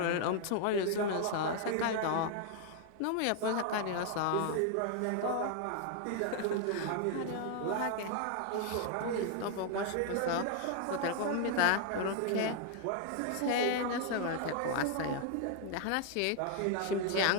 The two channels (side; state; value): both; different; correlation 0.00